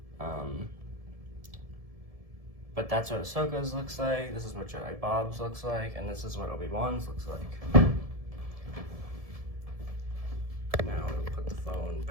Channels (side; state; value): left; late; 1.7 ms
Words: But that's what Ahsoka's looks like, this is what Jedi Bob's looks like, and this is what Obi-Wan's looks like. Now we'll put the phone